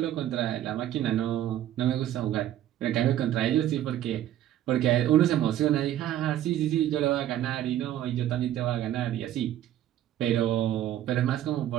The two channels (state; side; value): quieter; left; 12.2 dB